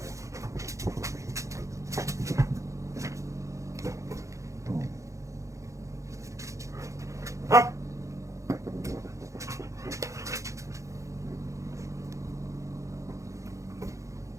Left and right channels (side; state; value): left; late; 0.15 ms